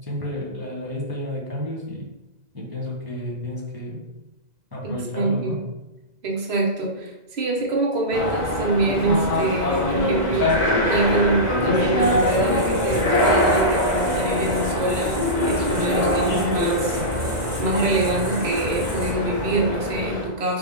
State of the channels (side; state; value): left; late; 2.0 ms